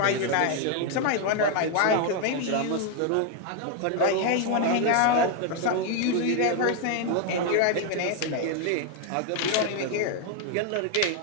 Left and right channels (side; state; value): both; different; correlation 0.01